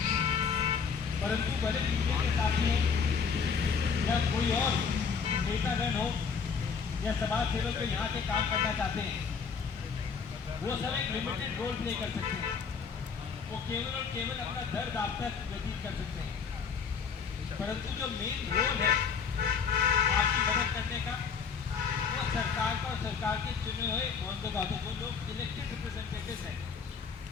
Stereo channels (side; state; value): right; quieter; 6.0 dB